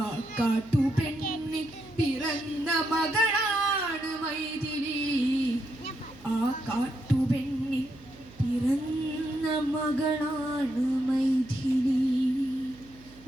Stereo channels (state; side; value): noise; right; hum, 23 dB below the sound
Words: കാട്ടുപെണ്ണിൽ പിറന്ന മകളാണ് മൈഥിലി. ആ കാട്ടുപെണ്ണിൽ പിറന്ന മകളാണ് മൈഥിലി.